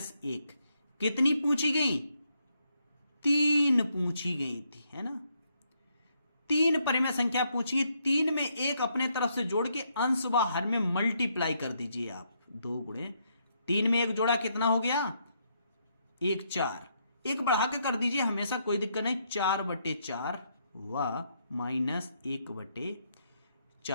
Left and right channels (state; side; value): inverted; both; correlation -0.75